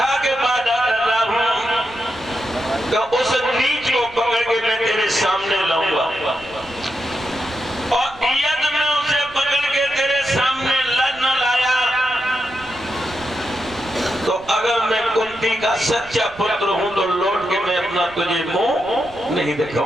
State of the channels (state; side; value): noise; right; rumble, 22 dB below the sound